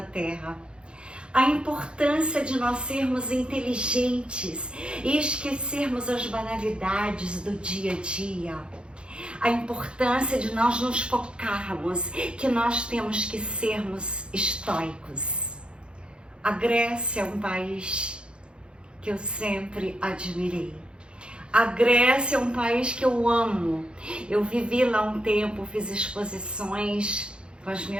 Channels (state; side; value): late; left; 0.054 ms